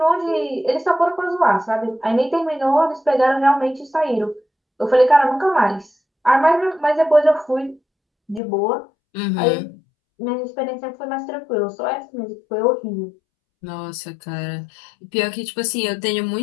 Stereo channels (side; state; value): right; drops out; at 8.4 s